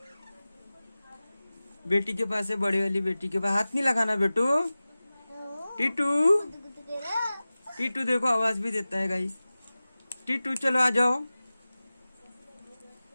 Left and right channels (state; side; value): inverted; both; correlation -0.97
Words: बेटी के पास है, बड़ी वाली बेटी के पास। हाथ नहीं लगाना बेटू। टीटू टीटू देखो आवाज भी देता है गाइस। टीटू चलो आ जाओ।